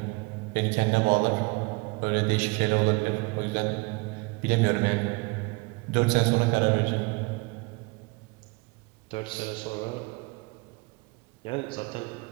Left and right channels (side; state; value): left; quieter; 27.4 dB